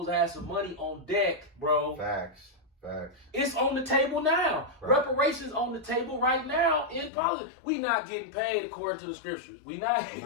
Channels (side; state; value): right; drops out; at 7.1 s